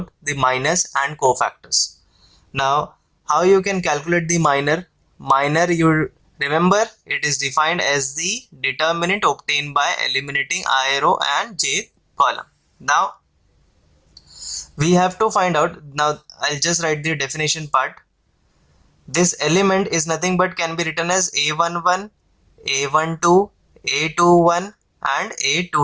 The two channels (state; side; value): identical; both; correlation 1.00